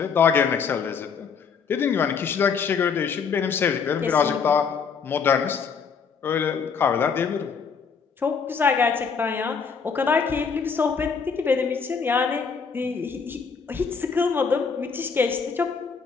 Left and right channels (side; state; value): right; quieter; 5.9 dB